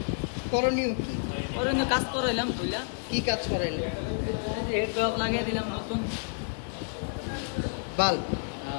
করণীয় কি? ওর জন্য কাজ করাইলাম বুঝলা, কি কাজ করাইলেন? হেড ড্রপ লাগিয়ে দিলাম নতুন। বাল্ব?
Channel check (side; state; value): right; silent; 58 dB below the other